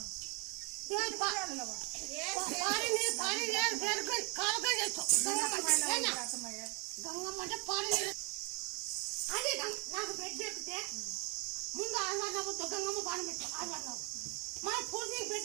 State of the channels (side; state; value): left; quieter; 30.9 dB